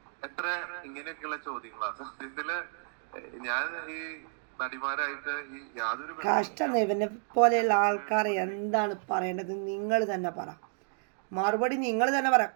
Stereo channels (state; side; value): silent; left; digital silence